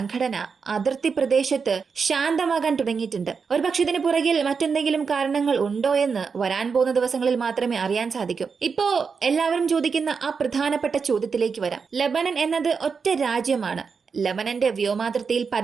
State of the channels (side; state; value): left; quieter; 5.5 dB